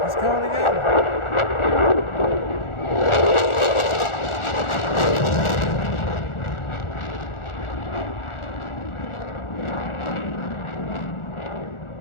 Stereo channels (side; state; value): right; late; 1.4 ms